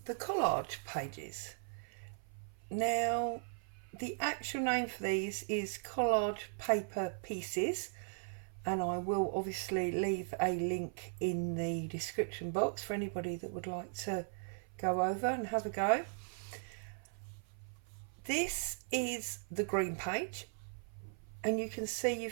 the collage pages. Now, the actual name for these is collage paper pieces, and I will obviously leave a link in the description box for anybody that would like to go over and have a go. This is the green page, and you can see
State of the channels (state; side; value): silent; left; 52 dB below the other